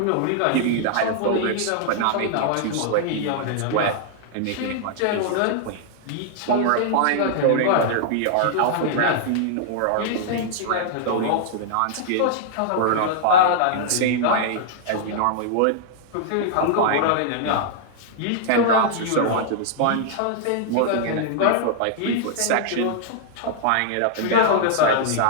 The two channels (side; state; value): both; different; correlation -0.01